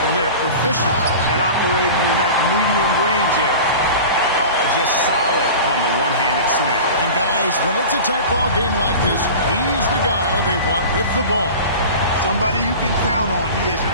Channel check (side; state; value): both; inverted; correlation -0.35